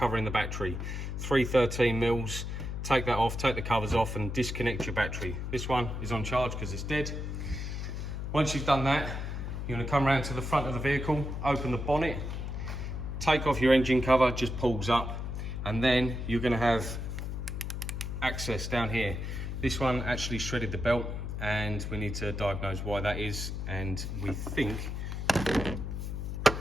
the battery. 313 mils. Take that off, take the covers off and disconnect your battery. This one is on charge because it's dead. Once you've done that, you're going to come around to the front of the vehicle, open the bonnet, take off your engine cover, just pulls up, and then you're going to have access down here. This one actually shredded the belt and we need to diagnose why that is, and we think, I'm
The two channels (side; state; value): left; noise; hum, 4 dB below the sound